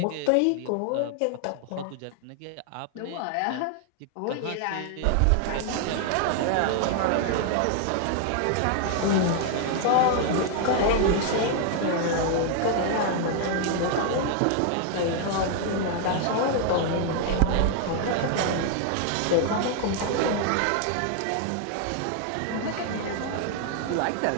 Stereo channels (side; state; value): both; different; correlation 0.00